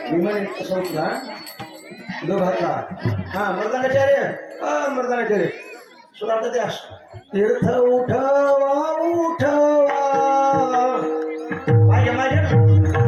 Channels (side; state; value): both; identical; correlation 1.00